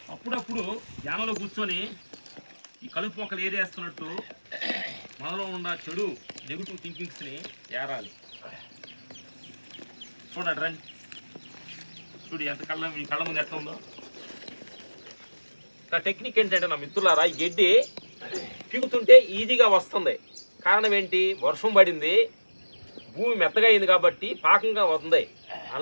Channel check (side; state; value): both; inverted; correlation -1.00